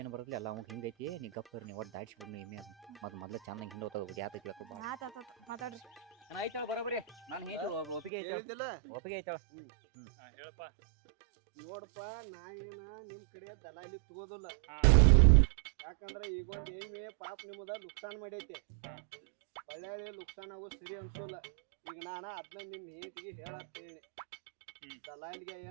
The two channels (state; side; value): drops out; left; at 8.1 s